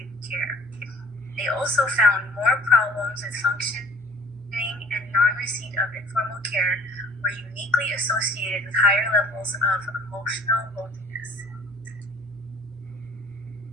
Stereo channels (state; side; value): normal; both; correlation 0.50